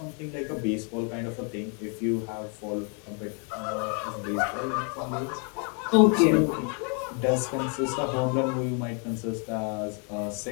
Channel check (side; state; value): right; quieter; 38.5 dB